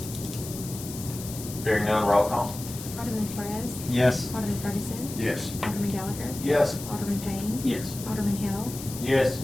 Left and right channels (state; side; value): noise; left; hiss, 11 dB below the sound